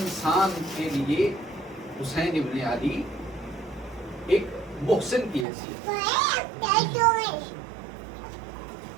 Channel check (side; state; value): left; drops out; at 5.5 s